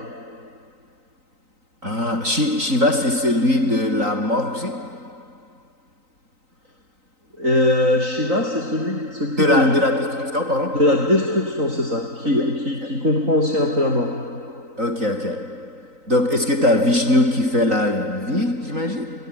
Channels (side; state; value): left; late; 3.9 ms